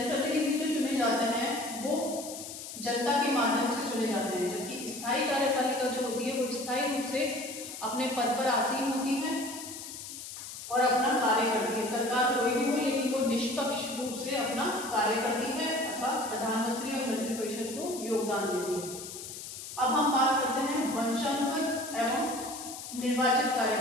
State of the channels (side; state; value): left; noise; hiss, 10 dB below the sound